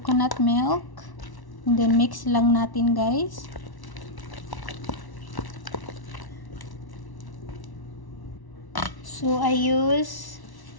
milk. And then mix lang natin, guys. So I use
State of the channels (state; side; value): late; right; 1.1 ms